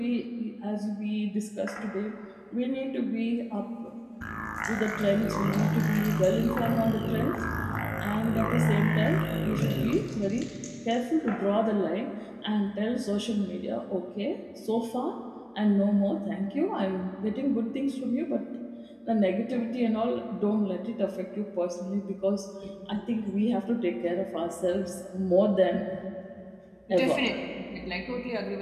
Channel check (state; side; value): identical; both; correlation 1.00